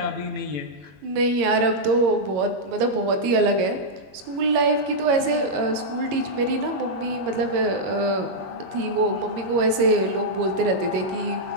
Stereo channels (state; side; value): late; left; 22 ms